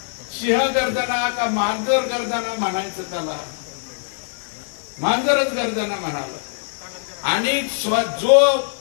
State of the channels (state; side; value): silent; right; digital silence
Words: सिंह गर्जना का मांजर गर्जना म्हणायचं त्याला? मांजरच गर्जना म्हणाला. आणि जो